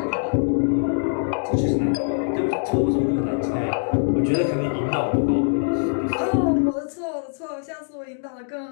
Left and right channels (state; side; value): silent; right; digital silence